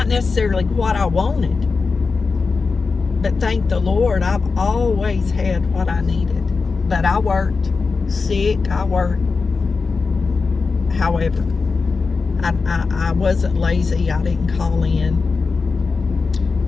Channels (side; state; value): right; quieter; 4.5 dB